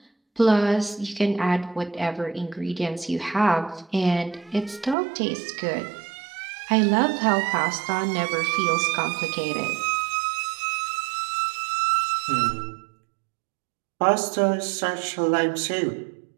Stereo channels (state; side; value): drops out; left; at 5.0 s